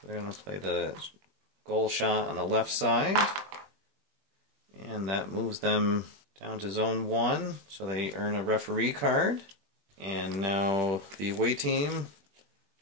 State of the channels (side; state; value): left; late; 21 ms